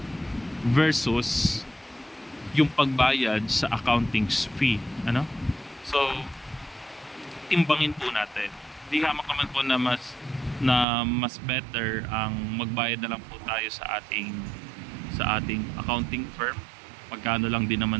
versus yung pagbayad sa accounting fee, ano? So timbangin po natin. Di hamak naman po na mas better ang magbayad na lang po tayo sa ating accounting firm. Magkano lang din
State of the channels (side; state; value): left; drops out; at 10.9 s